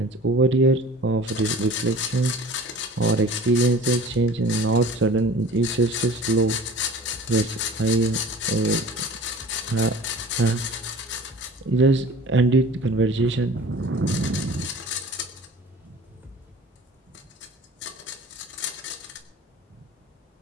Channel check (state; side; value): normal; both; correlation 0.43